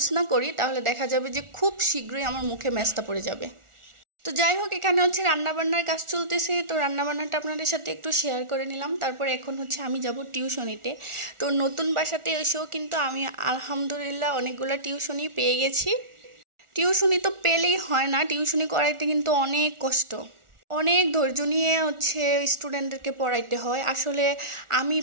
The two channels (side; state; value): left; late; 1.4 ms